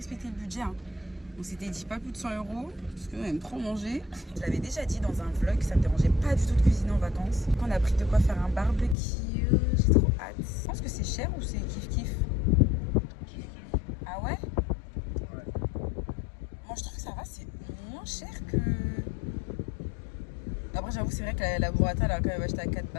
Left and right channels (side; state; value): right; drops out; at 9.0 s